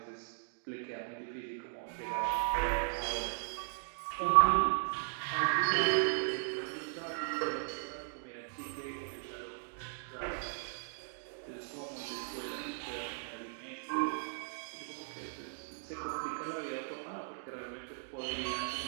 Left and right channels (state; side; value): silent; left; digital silence